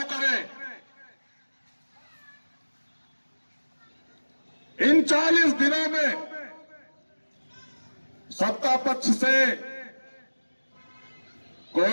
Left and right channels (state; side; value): inverted; both; correlation -1.00